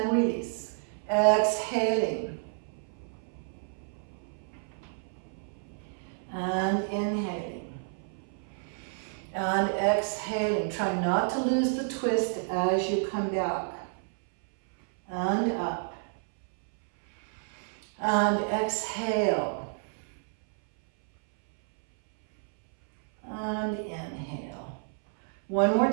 release. Exhaling. And inhaling. And exhaling. Try not to lose the twist as you come back. And up. And exhale. And inhale. One more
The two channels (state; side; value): silent; left; 58 dB below the other